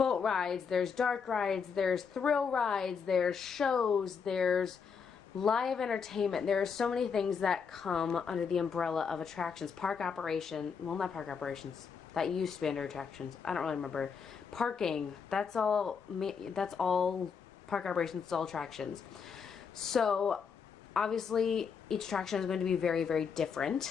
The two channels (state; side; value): quieter; right; 6.2 dB